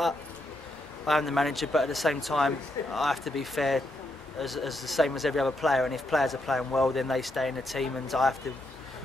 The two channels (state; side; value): normal; both; correlation 0.80